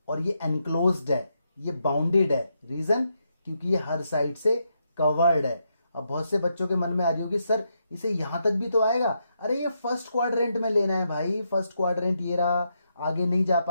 और ये एनक्लोज्ड है, ये बाउंडेड है। रीजन, क्योंकि ये हर साइड से कवर्ड है। अब बहुत से बच्चों के मन में आ रही होगी, सर इसे यहां तक भी तो आएगा। अरे ये फर्स्ट क्वाड्रेंट में लेना है भाई, फर्स्ट क्वाड्रेंट ये रहा, आगे नहीं जा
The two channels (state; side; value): inverted; both; correlation -0.81